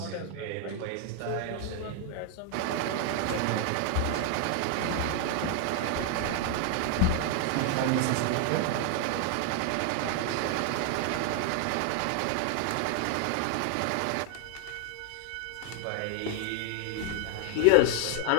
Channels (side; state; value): both; different; correlation 0.00